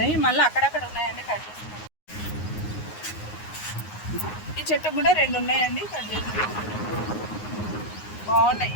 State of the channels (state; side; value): late; right; 9.6 ms